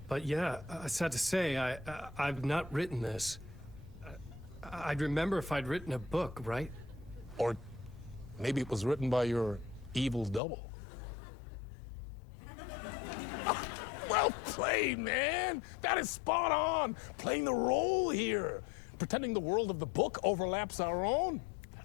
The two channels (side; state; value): right; drops out; at 10.4 s